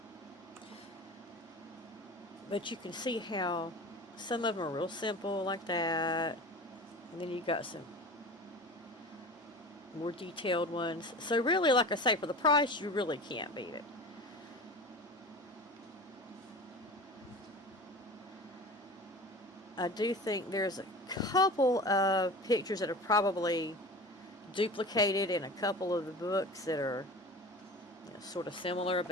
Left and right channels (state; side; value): normal; both; correlation 0.35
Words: But you can see how some of them are real simple like that. And then you got some more detailed ones. So really, like I say, for the price, you really can't beat it. I do think there's a couple of pictures that are probably duplicated in a couple of the books that are sort of similar.